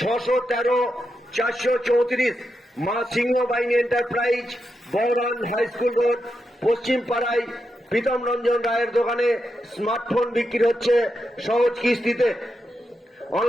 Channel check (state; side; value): normal; both; correlation 0.86